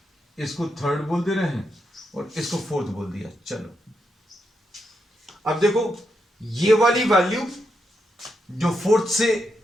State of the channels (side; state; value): both; normal; correlation 0.83